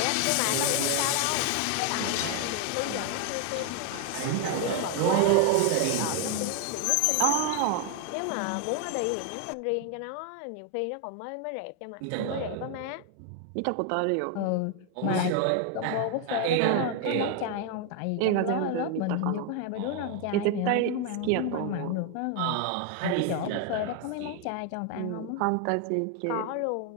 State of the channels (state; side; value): different; both; correlation 0.00